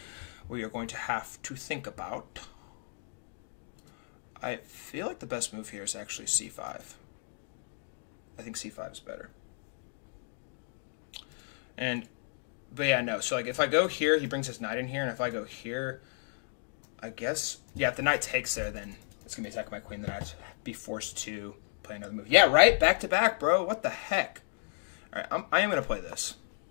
we are going to have to think about. I feel like the best move here is actually c5. I think c5 is better. But yeah, no. So like if I go here, he brings his knight in here, and if I go here, I guess, yeah, if the knight takes there, then it's going to be attacking my queen, then I'd be forced to play another move. Yeah, right? Back to back, bro. What the heck? All right, I am going to play this.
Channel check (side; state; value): right; silent; digital silence